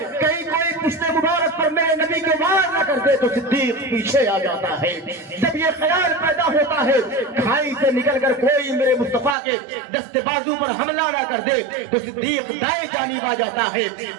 کہیں کوئی پشت مبارک پر میرے نبی کے وار نہ کر دے تو صدیق پیچھے آ جاتا ہے. جب یہ خیال پیدا ہوتا ہے کھائی سے نکل کر کوئی میرے مصطفیٰ کے دست بازو پر حملہ نہ کر دے تو صدیق دائیں جانب آ جاتا ہے.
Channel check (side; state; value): left; drops out; at 9.3 s